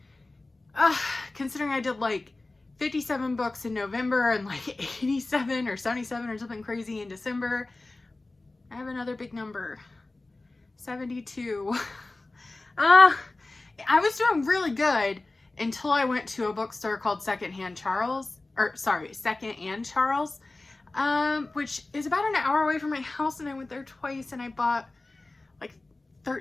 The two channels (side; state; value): right; quieter; 3.1 dB